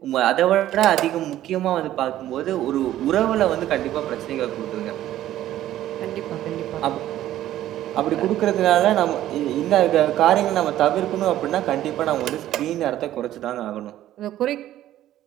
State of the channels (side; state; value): left; quieter; 13.2 dB